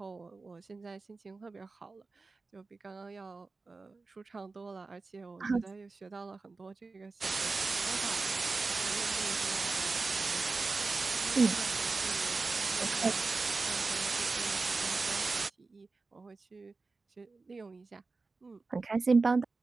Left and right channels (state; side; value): quieter; left; 3.9 dB